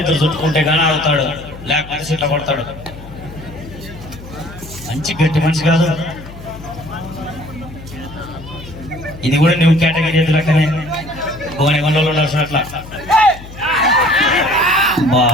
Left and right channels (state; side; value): noise; left; hum, 16 dB below the sound